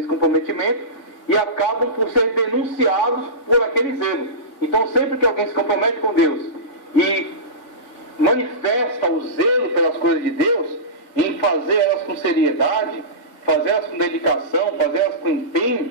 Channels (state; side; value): late; right; 3.5 ms